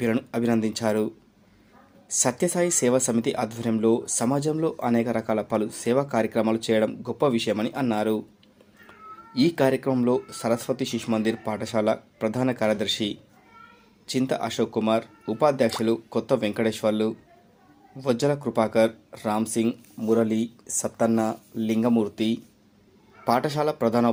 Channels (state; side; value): identical; both; correlation 1.00